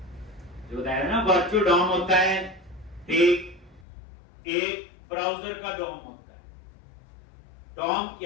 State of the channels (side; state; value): right; drops out; at 3.9 s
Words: जो बताया ना वर्चुअल डॉम होता है, एक ब्राउजर का डॉम होता है। डॉम